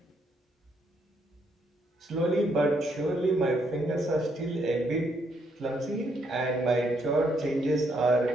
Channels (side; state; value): both; normal; correlation 0.74